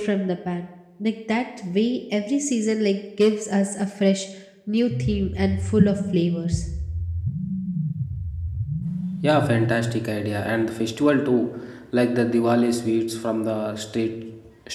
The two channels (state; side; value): identical; both; correlation 1.00